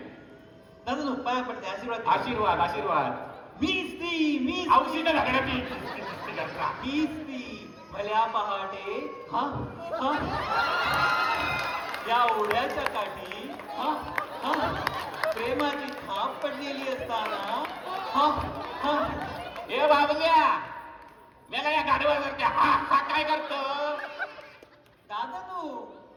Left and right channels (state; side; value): identical; both; correlation 1.00